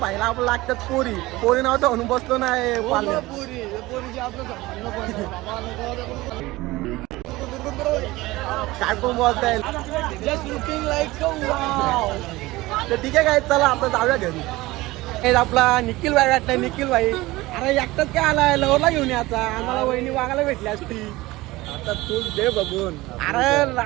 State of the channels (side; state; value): left; quieter; 19.6 dB